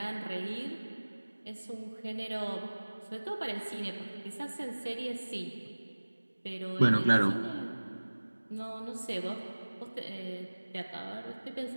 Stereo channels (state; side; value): inverted; both; correlation -1.00